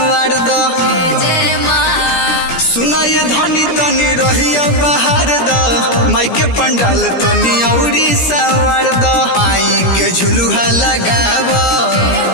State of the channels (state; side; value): late; right; 17 ms